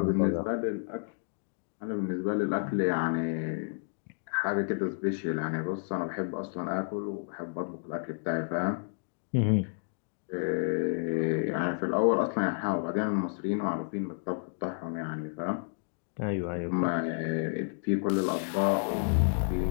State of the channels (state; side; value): silent; right; digital silence